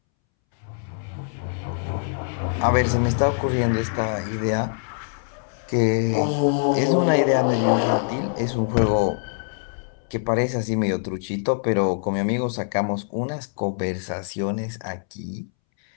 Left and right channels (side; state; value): right; silent; 63 dB below the other